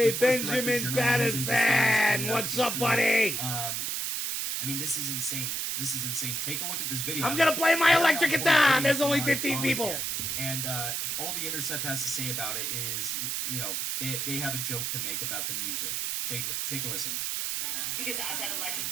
Benjamin Madison! What's up, buddy? I mean, this is insane. This is insane. Take a look at this video. I'm gonna play my electric guitar! There's only 15 people! And all the Intercept has to say about it is, they have a joke to make about the music. Take a listen. Because Assad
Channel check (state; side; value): noise; right; hiss, 1 dB below the sound